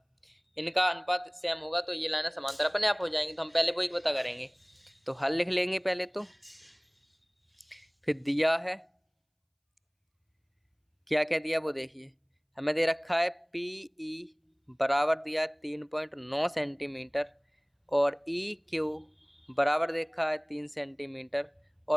इनका अनुपात सेम होगा तो ये लाइन समांतर अपने आप हो जाएंगी। तो हम पहले वो एक पता करेंगे, तो हल लिख लेंगे पहले तो, फिर दिया है क्या क्या दिया वो देखिए। हमें दे रखा है पी ई बराबर दिया है 3.9 सेंटीमीटर, और ई क्यू बराबर दे रखा है 3 सेंटीमीटर,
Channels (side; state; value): both; identical; correlation 1.00